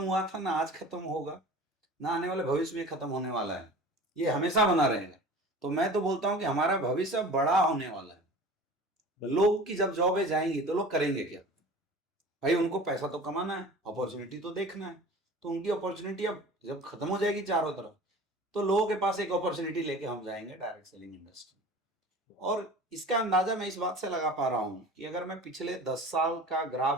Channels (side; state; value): both; normal; correlation 0.40